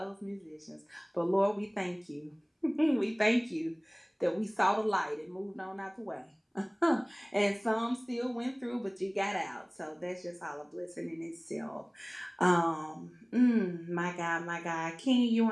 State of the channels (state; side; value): identical; both; correlation 1.00